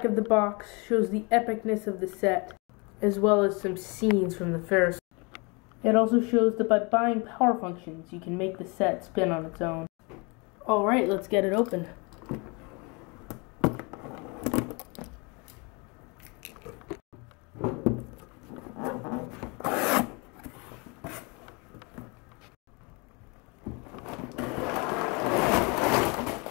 of the box shows the epicness of the set, as well as some scenes from the Ferris wheel. It also shows that by buying power functions, you can make the set spin on its own. Alright, let's get it open.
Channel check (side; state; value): right; quieter; 29.9 dB